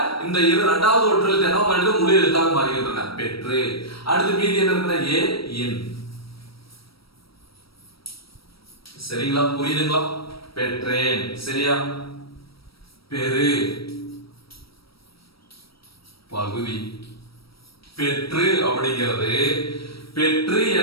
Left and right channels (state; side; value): late; right; 0.75 ms